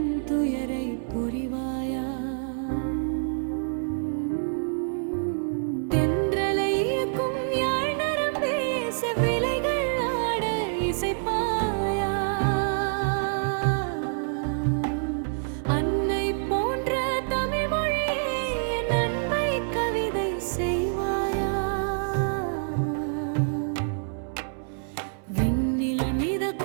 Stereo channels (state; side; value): silent; left; 60 dB below the other